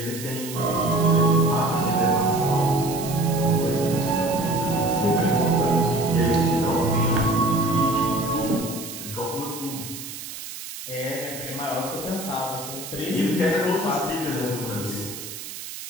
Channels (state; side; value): noise; right; hiss, 11 dB below the sound